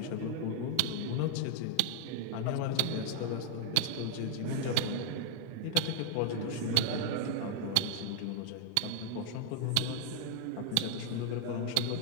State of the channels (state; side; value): different; both; correlation 0.00